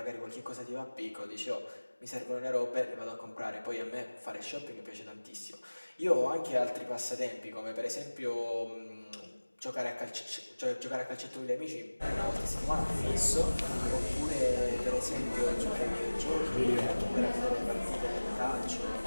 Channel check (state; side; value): inverted; both; correlation -1.00